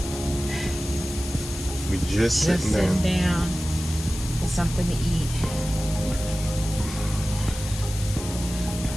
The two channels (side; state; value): left; noise; hiss, 10 dB below the sound